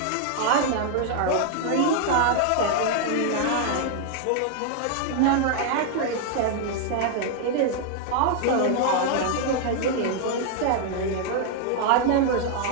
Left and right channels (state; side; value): different; both; correlation 0.00